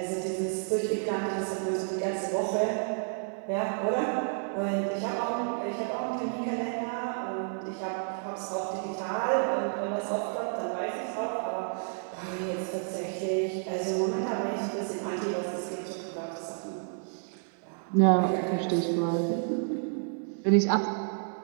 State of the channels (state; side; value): silent; left; 57 dB below the other